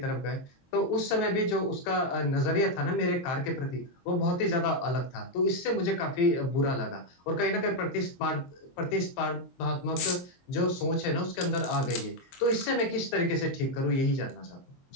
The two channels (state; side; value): late; right; 23 ms